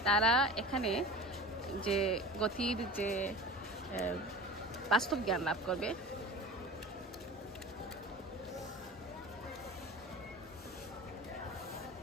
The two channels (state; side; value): normal; both; correlation 0.36